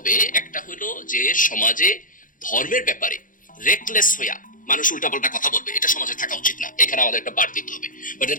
একটা হলো যে সমাজে ধর্মের ব্যাপারে রেকলেস হইয়া, মানুষ উল্টাপাল্টা কথা বলবে, এটা সমাজে থাকা উচিত না। এখানে আমাদের একটা বার দিতে হবে, but at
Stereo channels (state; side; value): late; right; 0.39 ms